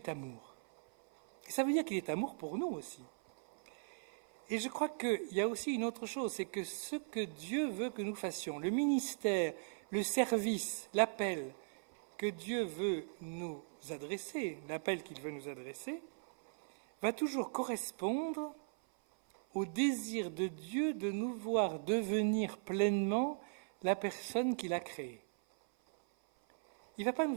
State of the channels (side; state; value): left; silent; 52 dB below the other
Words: amour. Et ça veut dire qu'il est amour pour nous aussi. Et je crois qu'il y a aussi une autre chose, c'est que ce que Dieu veut que nous fassions, le ministère, le service, l'appel que Dieu veut nous adresser, l'appel qu'il veut nous adresser, va toujours correspondre au désir de Dieu de nous voir devenir pleinement la personne qu'il a créée. Il ne va pas nous